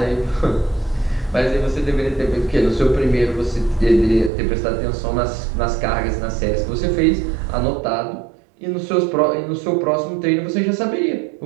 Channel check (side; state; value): left; drops out; at 4.3 s